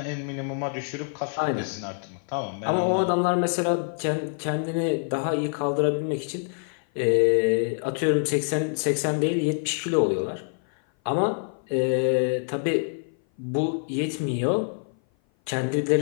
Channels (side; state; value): right; silent; 57 dB below the other